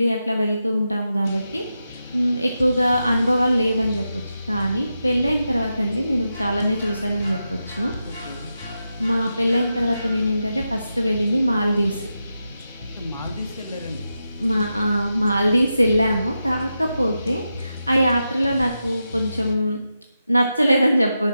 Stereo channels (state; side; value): inverted; both; correlation -0.89